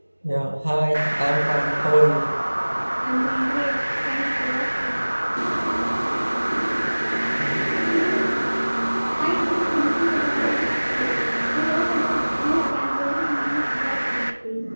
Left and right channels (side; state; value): both; inverted; correlation -1.00